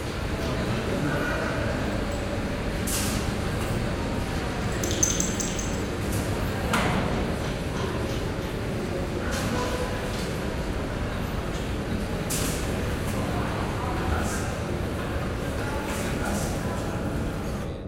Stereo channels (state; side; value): identical; both; correlation 1.00